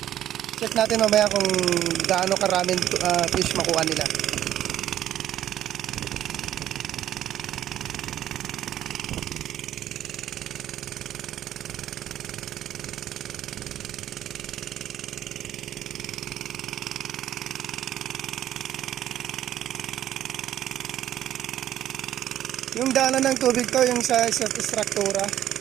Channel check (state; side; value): quieter; left; 11.8 dB